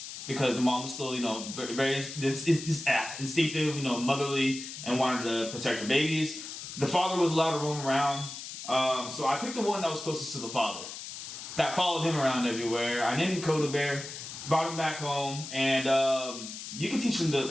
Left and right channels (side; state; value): left; noise; hiss, 10 dB below the sound